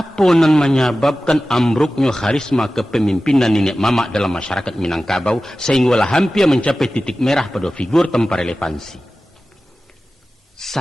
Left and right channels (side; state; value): both; normal; correlation 0.95